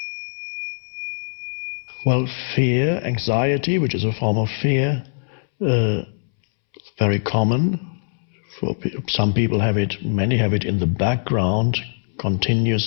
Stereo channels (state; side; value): silent; right; 64 dB below the other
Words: Well, fear, anxiety, which is a form of fear, very common. Some people have it, many have it in the background